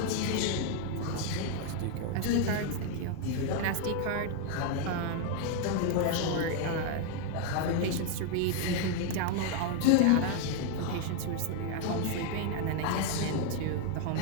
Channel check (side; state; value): both; different; correlation 0.01